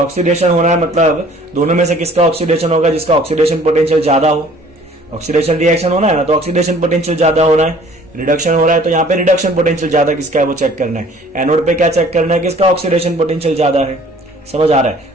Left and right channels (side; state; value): both; normal; correlation 0.53